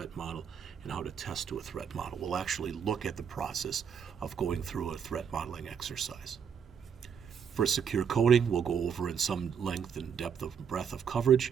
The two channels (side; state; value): left; quieter; 7.3 dB